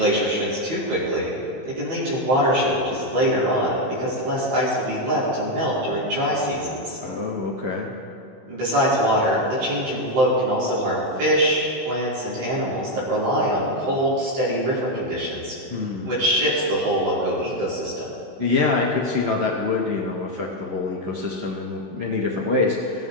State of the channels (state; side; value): late; left; 16 ms